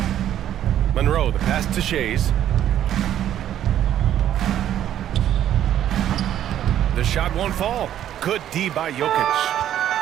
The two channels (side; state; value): left; quieter; 11.2 dB